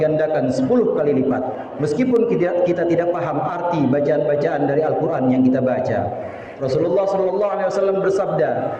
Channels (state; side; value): identical; both; correlation 1.00